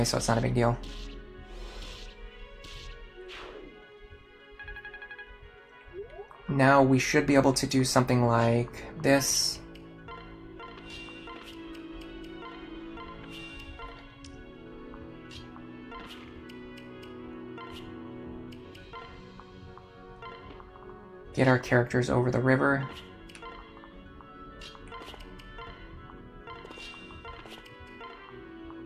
so it's not a big deal. Now we should be able to do something like this. Get our characters over the river.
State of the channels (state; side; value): identical; both; correlation 1.00